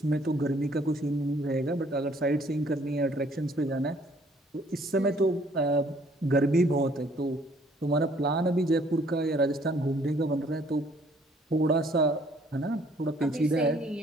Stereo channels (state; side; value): normal; both; correlation 0.61